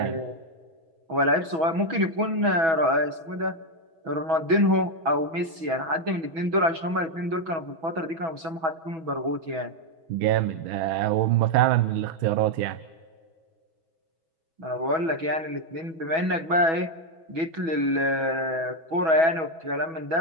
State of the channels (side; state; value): left; late; 6.1 ms